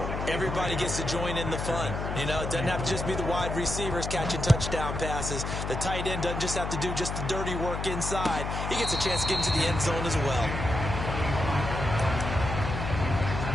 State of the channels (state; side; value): noise; left; hum, 4 dB below the sound